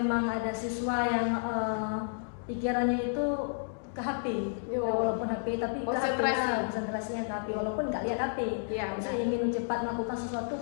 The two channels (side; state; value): right; silent; digital silence